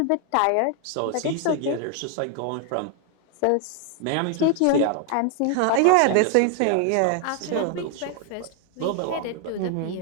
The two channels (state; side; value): different; both; correlation 0.01